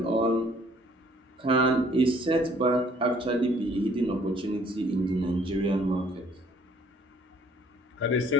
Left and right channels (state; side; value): normal; both; correlation 0.60